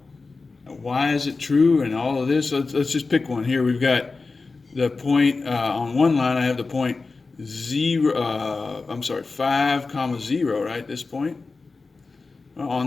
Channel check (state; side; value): quieter; right; 4.0 dB